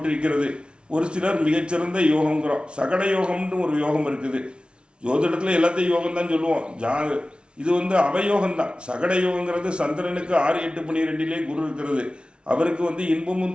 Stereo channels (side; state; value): left; late; 0.057 ms